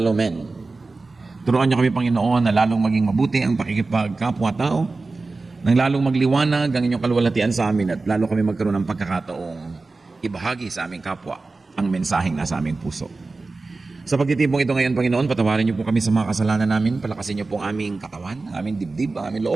men. Turuan niyo kami, Panginoon, na lalong maging mabuti ang pakikipagkapwa-tao, nang lalong magliwanag ang inyong kaluwalhatian sa amin at lalo kami magkaroon ng pagkakataong ibahagi sa aming kapwa ang mensaheng nasa aming puso. Sa pagtitipong ito ngayon, Panginoon, patawarin niyo po kami sa mga kasalanan namin, palakasin niyo po ang aming katawan, aming dibdib, ang aming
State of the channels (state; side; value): quieter; left; 3.6 dB